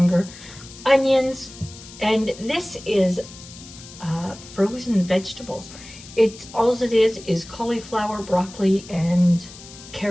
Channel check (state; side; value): noise; left; hiss, 17 dB below the sound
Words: Onions, and this is frozen vegetables. All it is cauliflower, broccoli, and